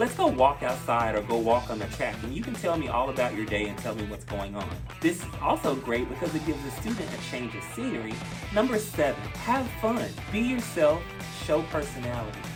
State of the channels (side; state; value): both; identical; correlation 1.00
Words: go walk outside or go walk on the track and you can tell me all about your day and tell me what's going on. This is also great because it gives the student a change of scenery. Number 7, have fun. Be yourself, show personality.